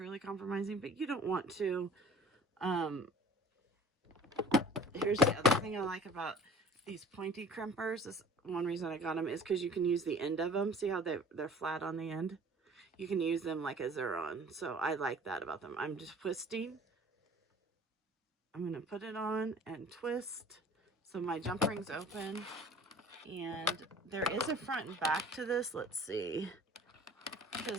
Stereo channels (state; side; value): normal; both; correlation 0.47